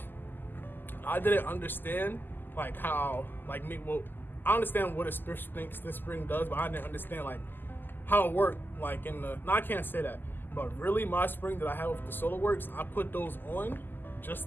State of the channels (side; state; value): right; late; 0.092 ms